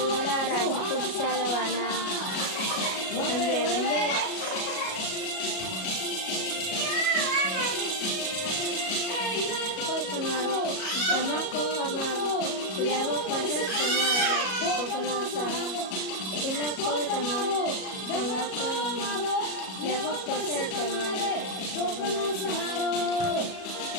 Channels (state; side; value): late; right; 37 ms